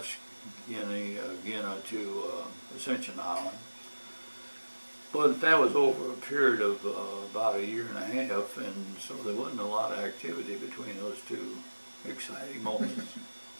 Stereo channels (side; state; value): both; inverted; correlation -1.00